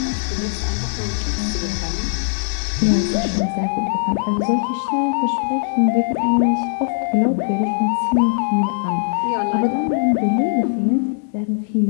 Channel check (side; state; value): right; silent; digital silence